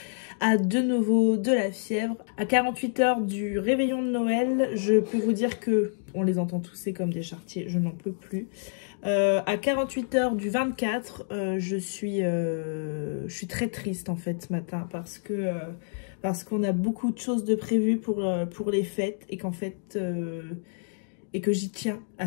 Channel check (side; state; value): right; silent; digital silence